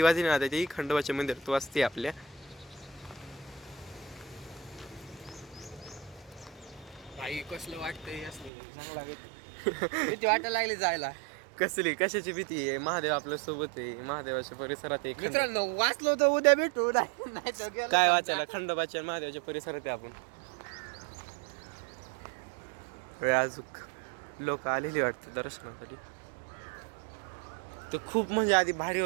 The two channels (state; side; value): drops out; left; at 8.5 s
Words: वाजली ना, ती खंडोबाच्या मंदिरात वाजते आपल्या. भाई कसलं वाटतंय, चांगला भीती वाटायला लागली जायला. कसली कशाची भीती आहे? महादेव आपल्या सोबत आहे, महादेवाच्या परिसरात आहे. मित्रांनो, वाचलो तर उद्या भेटू, नाही तर काय वाचायला? खंडोबाच्या आणि महादेवाच्या परिसरात आहे आपण. अजूक लोक आलेली वाटते दर्शनासाठी. ते खूप म्हणजे आधी भारी